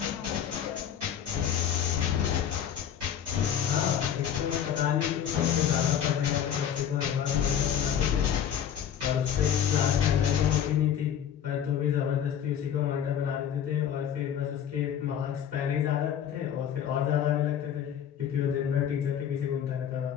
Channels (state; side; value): quieter; right; 9.1 dB